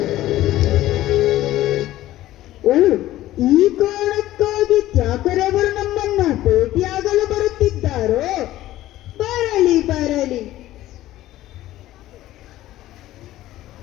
ಈ ಕಾರಣಕ್ಕಾಗಿ ತ್ಯಾಕರೆ ಅವರು ನಮ್ಮನ್ನ ಭೇಟಿಯಾಗಲು ಬರುತ್ತಿದ್ದಾರೋ? ಬರಲಿ ಬರಲಿ.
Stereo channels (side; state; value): right; quieter; 14.9 dB